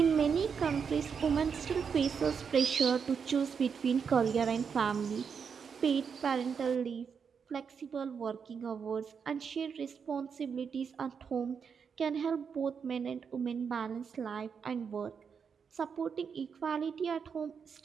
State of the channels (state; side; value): quieter; left; 6.4 dB